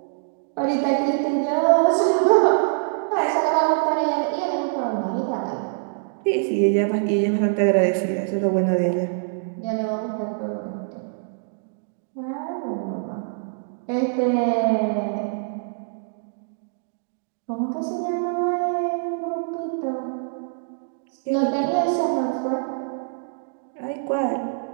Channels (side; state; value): left; silent; digital silence